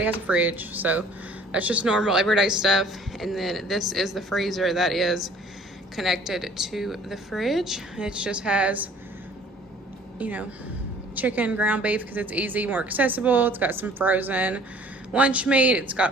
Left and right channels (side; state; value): both; normal; correlation 0.52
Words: has a fridge, so that's just normal everyday stuff. And then this is the freezer that is connected to the fridge. It just has, you know, chicken, ground beef, because it's easy, more accessible. It's got some frozen lunch meat. It's